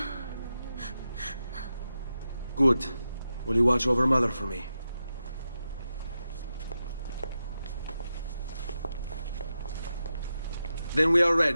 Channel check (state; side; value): inverted; both; correlation -0.89